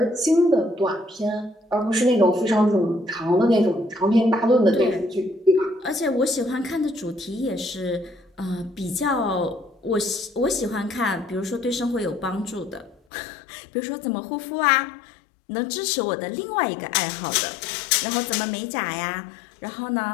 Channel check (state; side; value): drops out; right; at 13.0 s